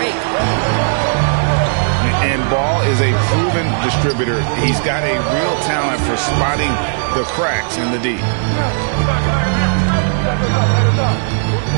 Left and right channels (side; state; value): left; silent; 62 dB below the other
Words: And Ball is a proven distributor. He's got a real talent for spotting the cracks in the D.